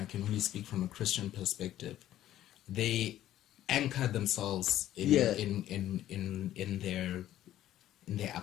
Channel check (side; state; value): right; quieter; 12.9 dB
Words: I can only speak from a Christian perspective. They anchor themselves in their